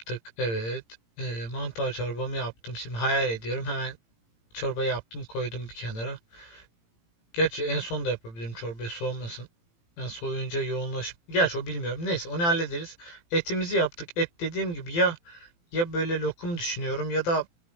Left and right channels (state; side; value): late; right; 18 ms